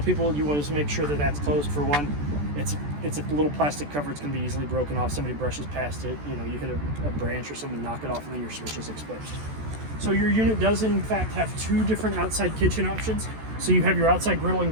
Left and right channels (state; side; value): late; left; 14 ms